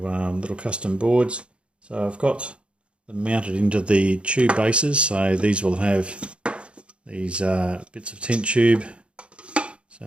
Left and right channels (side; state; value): left; late; 0.058 ms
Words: little custom boards. So I've got them mounted into the tube bases, so these will have these bits of tent tube, so